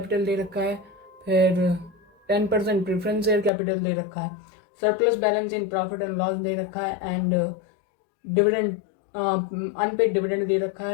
दे रखा है, फिर 10% प्रेफरेंस शेयर कैपिटल दे रखा है, surplus balance in profit and loss दे रखा है, एंड डिविडेंड अनपेड डिविडेंड दे रखा है,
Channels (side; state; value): right; drops out; at 3.5 s